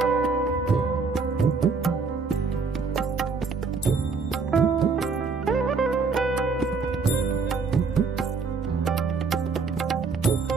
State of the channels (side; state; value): left; quieter; 4.7 dB